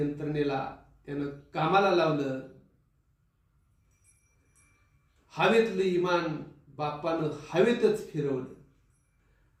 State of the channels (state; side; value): identical; both; correlation 1.00